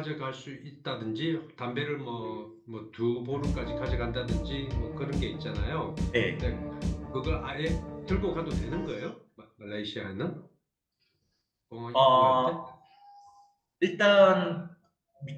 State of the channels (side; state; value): both; identical; correlation 1.00